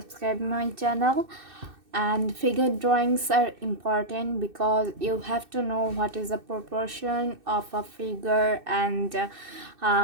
my channel. And figure drawings are important because you have to know what is the proportion of a figure, and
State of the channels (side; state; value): left; late; 2.6 ms